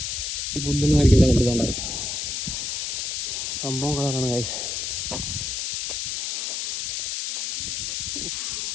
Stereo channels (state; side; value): noise; left; hiss, 2 dB below the sound